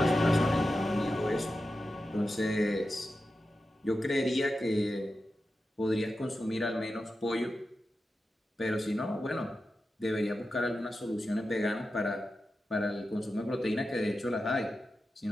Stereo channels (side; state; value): both; normal; correlation 0.91